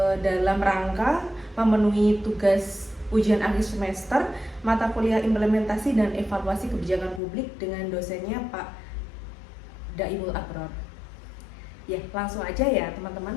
dalam rangka memenuhi tugas ujian akhir semester mata kuliah implementasi dan evaluasi kebijakan publik dengan dosennya Pak Daimul Abror. Ya, langsung aja ya teman-teman.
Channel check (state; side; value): drops out; right; at 7.2 s